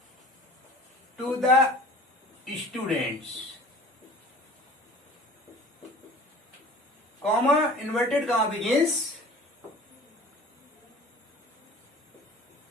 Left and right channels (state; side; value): normal; both; correlation 0.44